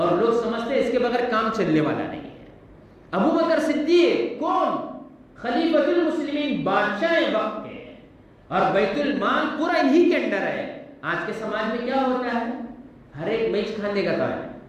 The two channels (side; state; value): both; identical; correlation 1.00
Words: لوگ سمجھتے ہیں اس کے بغیر کام چلنے والا نہیں ہے۔ ابو بکر صدیق کون؟ خلیفۃ المسلمین، بادشاہ وقت کے، اور بیت المال پورا انہی کے اندر ہے۔ آج کے سماج میں کیا ہوتا ہے، ہر ایک میچ کھانے کا کام ہے،